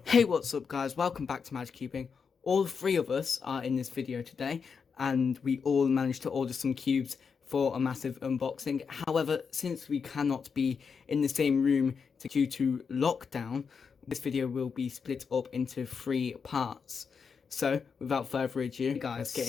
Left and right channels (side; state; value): right; quieter; 5.9 dB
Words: Hey, what's up guys? Welcome back to MAJcubing. All three of us are in this video today and we all managed to order some cubes for a massive unboxing. However, since we cannot be in the same room due to lockdown, this video will be split up into 3 parts. So, without further ado, guys,